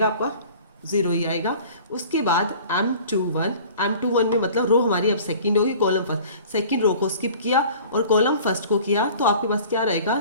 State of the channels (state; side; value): inverted; both; correlation -0.46